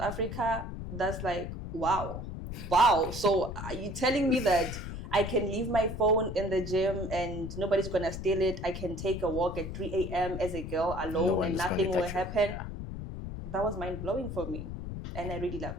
that's like, wow. So are you telling me that I can leave my phone in the gym and nobody's going to steal it? I can take a walk at 3 a.m. as a girl alone and nothing will happen? Yeah. That was mind-blowing for me. And I really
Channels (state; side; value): noise; left; rumble, 7 dB below the sound